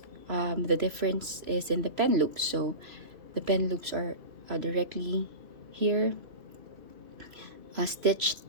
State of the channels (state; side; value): late; left; 2.7 ms